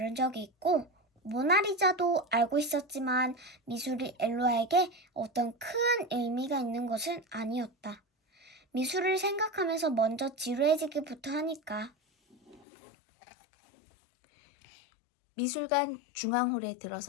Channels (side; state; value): right; drops out; at 12.7 s